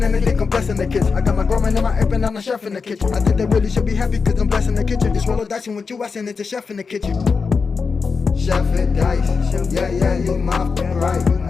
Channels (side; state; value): right; quieter; 5.0 dB